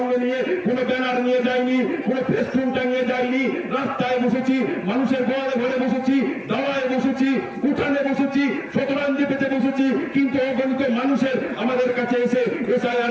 নিয়ে কোনো ব্যানার নিয়ে যাইনি, কোনো ফেস্টুন টাঙিয়ে যাইনি। রাস্তায় বসেছি, মানুষের ঘরে ঘরে বসেছি, দাওয়ায় বসেছি, উঠানে বসেছি, শতরঞ্জি পেতে বসেছি, কিন্তু অগণিত মানুষের আমাদের কাছে এসে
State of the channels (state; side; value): identical; both; correlation 1.00